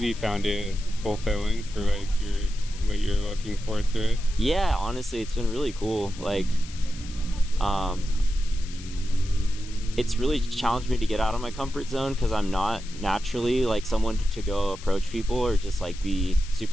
found it fulfilling for like what you're looking for through it? Yeah, honestly, it's been really cool. Like, it's really challenged me to get out of my comfort zone because I'm not naturally like someone to go approach people or just like be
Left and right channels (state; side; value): noise; left; hiss, 17 dB below the sound